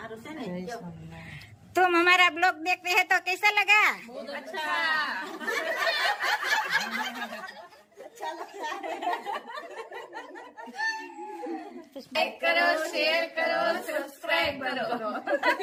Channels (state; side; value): identical; both; correlation 1.00